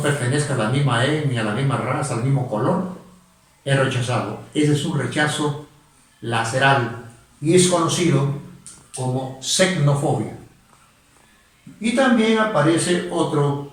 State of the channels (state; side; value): identical; both; correlation 1.00